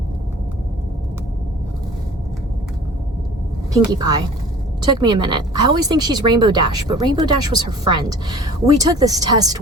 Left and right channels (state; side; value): normal; both; correlation 0.46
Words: Pinkie Pie. Took me a minute. I always think she's Rainbow Dash, but Rainbow Dash was her friend. We took this test